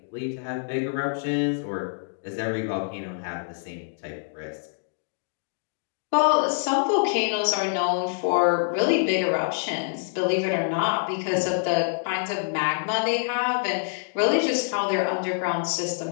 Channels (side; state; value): right; silent; digital silence